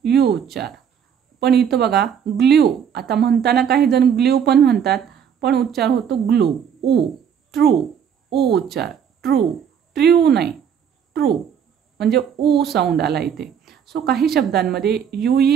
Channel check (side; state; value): left; quieter; 8.0 dB